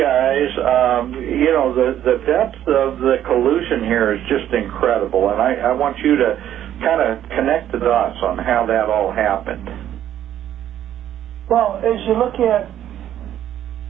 the depth of the collusion here is just incredible, and I want you to kind of connect the dots on how that all happened. Well, as you look at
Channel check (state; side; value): quieter; left; 11.3 dB